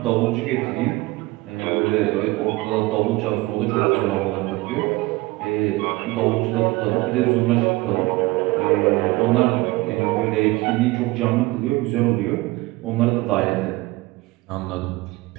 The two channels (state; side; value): quieter; left; 20.8 dB